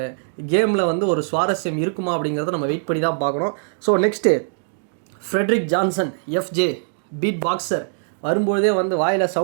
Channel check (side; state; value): left; silent; digital silence